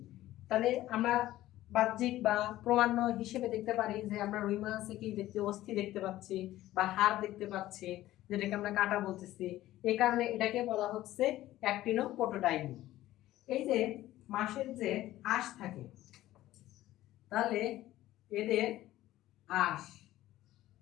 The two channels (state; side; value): quieter; right; 15.1 dB